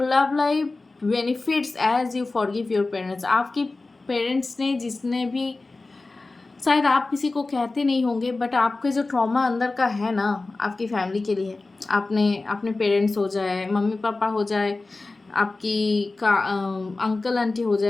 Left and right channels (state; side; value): quieter; right; 3.4 dB